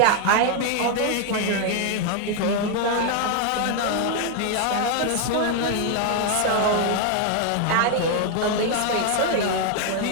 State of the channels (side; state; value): both; different; correlation 0.00